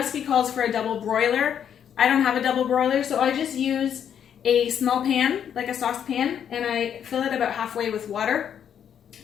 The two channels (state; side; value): quieter; right; 8.8 dB